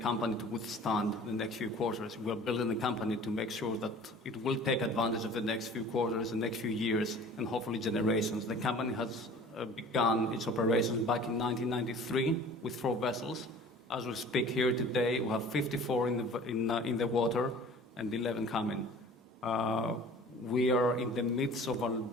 to withstand the next few quarters. We're building the company to make sure that it will take advantage of the next few quarters, the next few years, and hopefully generations. The company has begun its operations back in 1993 with 4 vessels. As we speak here today, we have 54 in the water and 11 coming. We are in the midst of our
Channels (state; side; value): normal; both; correlation 0.45